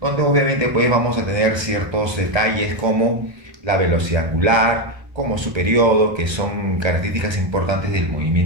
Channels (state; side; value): late; left; 1.3 ms